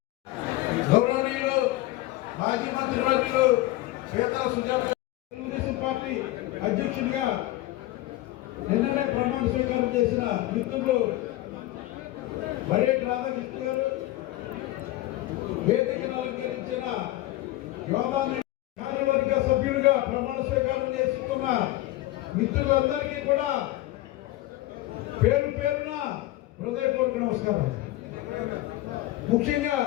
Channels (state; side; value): quieter; right; 16.9 dB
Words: గౌరవనీయులు మాజీ మంత్రివర్యులు పేద సుజాత తెలుగుదేశం పార్టీ అధ్యక్షుడిగా నిన్ననే ప్రమాణ స్వీకారం చేసిన మిత్రులు బడేటి రాధాకృష్ణ గారు, వేదికను అలంకరించిన యోగా కార్యవర్గ సభ్యుడిగా ప్రమాణ స్వీకారం చేస్తున్న మిత్రులందరికీ కూడా పేరు పేరున హృదయపూర్వక నమస్కారం. ముఖ్యంగా